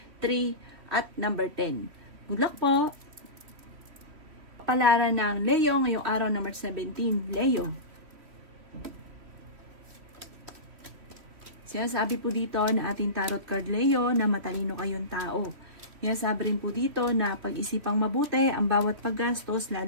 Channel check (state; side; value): late; left; 3.1 ms